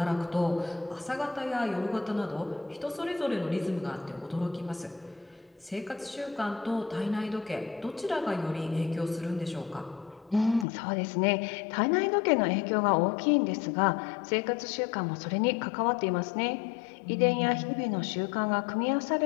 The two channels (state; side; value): drops out; right; at 10.7 s